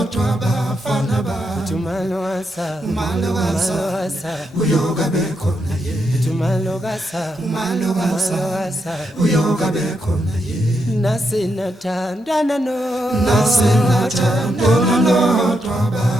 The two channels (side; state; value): both; normal; correlation 0.82